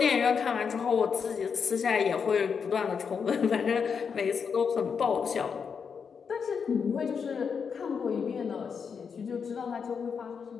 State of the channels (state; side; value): quieter; right; 6.3 dB